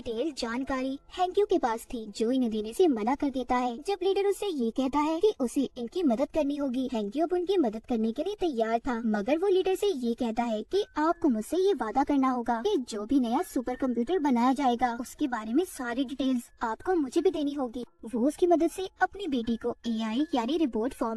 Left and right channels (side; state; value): both; identical; correlation 1.00